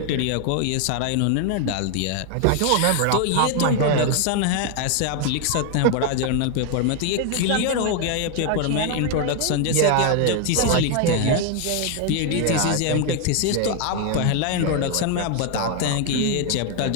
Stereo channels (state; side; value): different; both; correlation 0.01